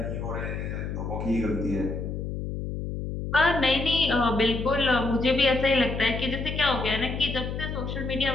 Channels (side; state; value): left; noise; hum, 5 dB below the sound